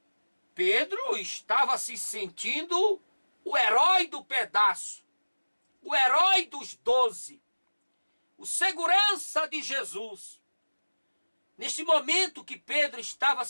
Pedro estava se sentindo o herói do pedaço, o herói dos 12, o segurança de Jesus. Neste momento que Pedro estava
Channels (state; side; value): inverted; both; correlation -1.00